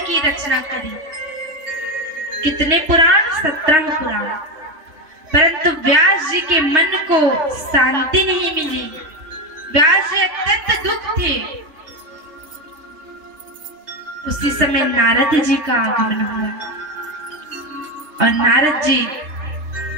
की रचना करी। कितने पुराण? 17 पुराण। परंतु व्यास जी के मन को शांति नहीं मिली। व्यास जी अत्यंत दुख थे। उसी समय नारद जी का आगमन हुआ और नारद जी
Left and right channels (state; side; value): late; left; 3.3 ms